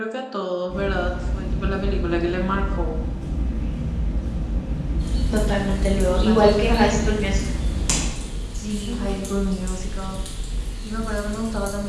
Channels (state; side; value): identical; both; correlation 1.00